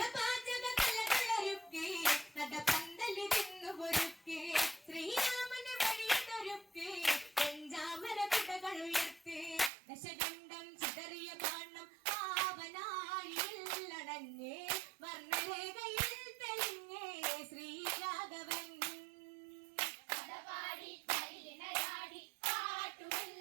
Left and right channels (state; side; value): drops out; left; at 9.7 s